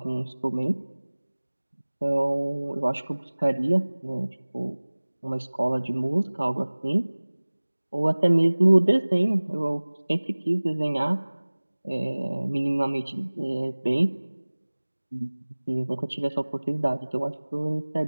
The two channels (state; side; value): inverted; both; correlation -1.00